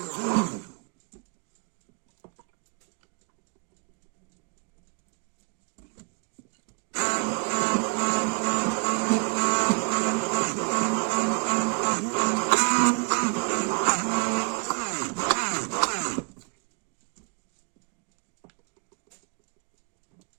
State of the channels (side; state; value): left; quieter; 37.4 dB